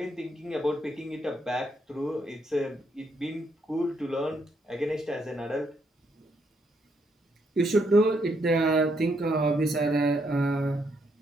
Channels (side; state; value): both; normal; correlation 0.75